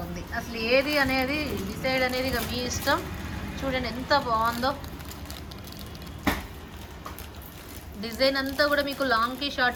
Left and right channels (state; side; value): identical; both; correlation 1.00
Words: అసలు ఏది అనేది డిసైడ్ అనేది ఇక మీ ఇష్టం. చూడండి ఎంత బాగుందో. డిజైన్ అంతా కూడా మీకు లాంగ్కి